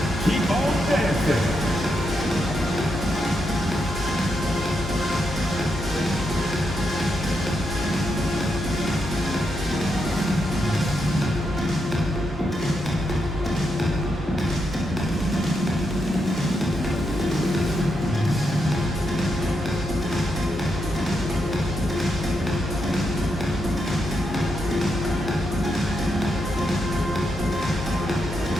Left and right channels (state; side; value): normal; both; correlation 0.82